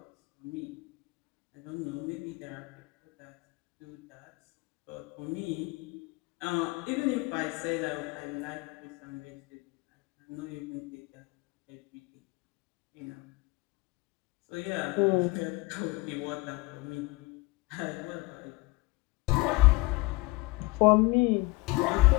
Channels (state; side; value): quieter; right; 23.2 dB